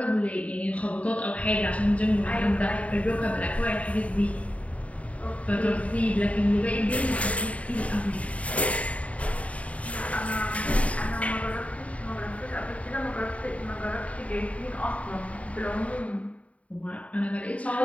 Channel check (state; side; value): late; right; 0.066 ms